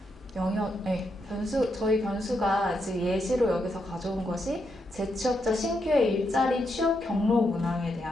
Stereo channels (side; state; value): both; normal; correlation 0.81